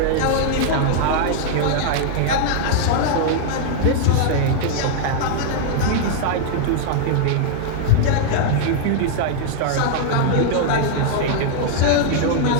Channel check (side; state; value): both; different; correlation -0.01